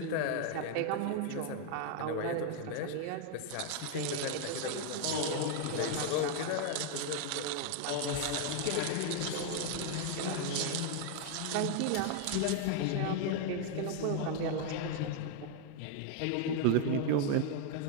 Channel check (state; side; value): different; both; correlation 0.00